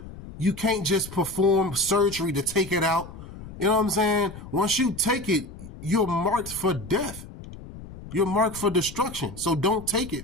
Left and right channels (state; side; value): noise; left; rumble, 14 dB below the sound